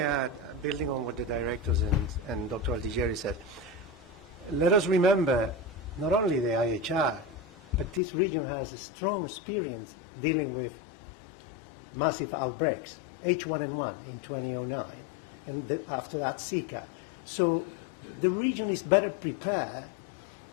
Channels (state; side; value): drops out; right; at 8.0 s